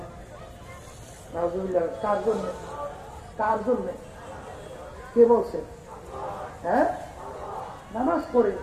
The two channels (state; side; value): identical; both; correlation 1.00